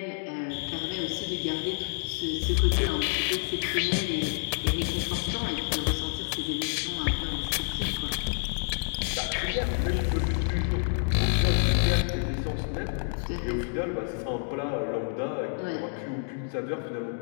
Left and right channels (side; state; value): right; silent; digital silence